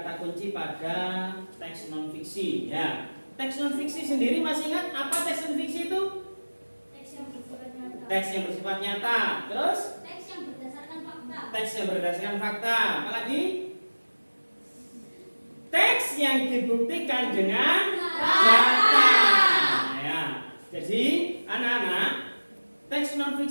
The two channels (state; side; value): inverted; both; correlation -1.00